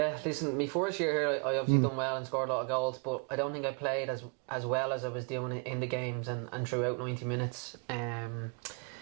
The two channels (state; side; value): quieter; left; 36.1 dB